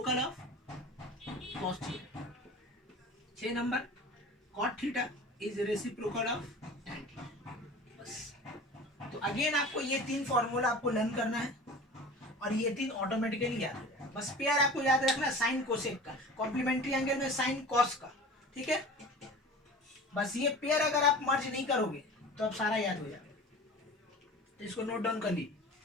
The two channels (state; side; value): normal; both; correlation 0.38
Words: of cos theta। 6 number, cot theta is reciprocal of tan theta। बस, तो again आपको ये 3 formula आपको learn करना है और ये 3 ऑटोमेटिकली याद हो जाएगा। बस पेयर आपको याद रखना साइन कोसेक का, कॉम्प्लीमेंट्री एंगल में साइन कॉस का। ठीक है, बस ये पेयर अगर आप मर्ज नहीं करोगे तो अब सारा याद हो जाएगा। तो इसको नोट डाउन कर लीजिए।